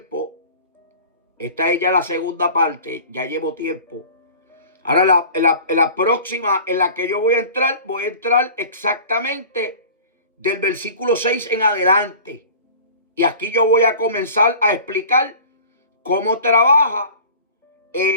Esta es ya la segunda parte, ya llevo tiempo. Ahora en la próxima en la que yo voy a entrar exactamente del versículo 6 en adelante. Y aquí yo voy a comenzar a explicar cómo trabaja,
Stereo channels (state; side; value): inverted; both; correlation -0.42